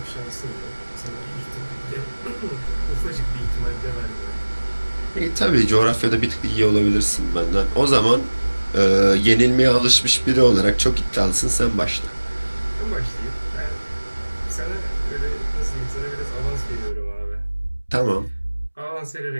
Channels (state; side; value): inverted; both; correlation -1.00